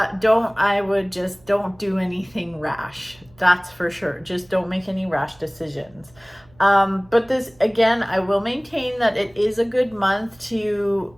would just don't do anything rash. That's for sure. Just don't make any rash decisions. But this, again, I will maintain that it is a good month to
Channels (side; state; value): right; noise; hum, 29 dB below the sound